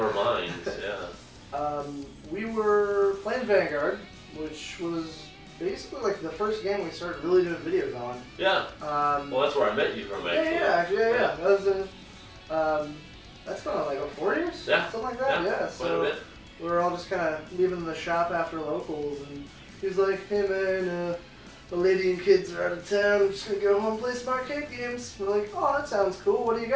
minds. Yeah. We were playing Vanguard, which was basically like the first game we started really doing videos on. Yeah. Well, that's where I met you from, actually. Yeah. That was that's going on like 4 years? Yeah. Something like that, yeah. So we were all just kind of leaving the shop after locals, and he's like, hey man, the lady and kids are out of town, I'm just going to go home and play some arcade games. We're like, oh, that sounds cool, what do you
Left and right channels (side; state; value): both; identical; correlation 1.00